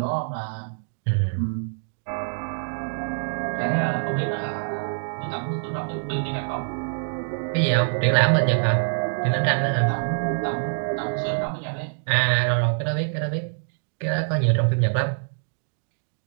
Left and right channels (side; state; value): left; silent; digital silence